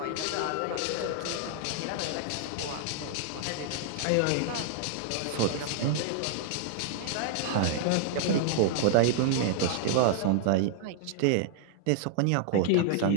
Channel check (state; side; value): different; both; correlation 0.00